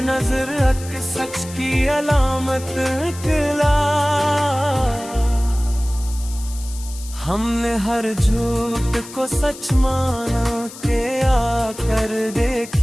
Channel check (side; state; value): left; noise; hiss, 15 dB below the sound